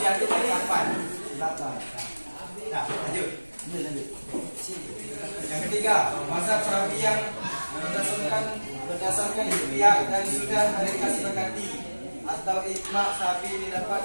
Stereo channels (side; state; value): both; inverted; correlation -1.00